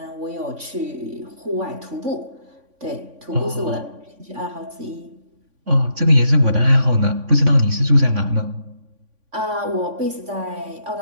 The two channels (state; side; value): late; left; 3.5 ms